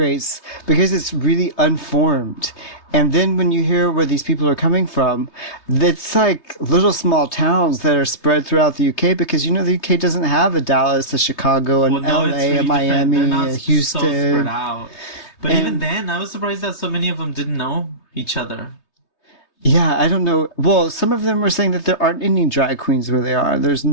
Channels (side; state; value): right; late; 3.2 ms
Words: because it's really unformed. And then when you hear where these people are coming from, it's like little small towns that are spread throughout the UK, because, the UK doesn't have a Dallas, a Chicago, an LA, it's really a Miami, different. They're not a so Houston. spread out. But And- even then, I was surprised that so many of them didn't know each other. Yeah, I don't know. Well, some of them were saying that there aren't any drag queens where they are. There's